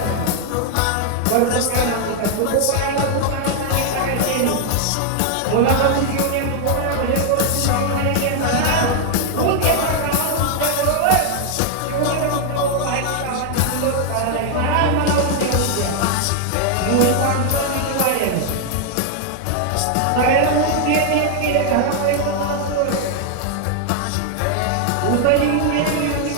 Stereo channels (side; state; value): both; different; correlation 0.00